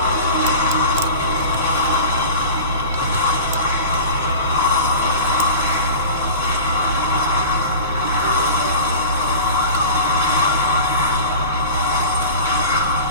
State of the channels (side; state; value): both; inverted; correlation -0.34